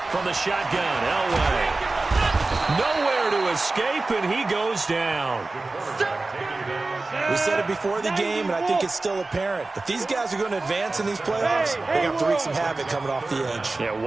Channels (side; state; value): left; quieter; 3.3 dB